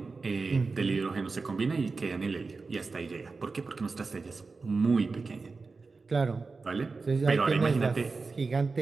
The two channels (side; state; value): left; quieter; 4.2 dB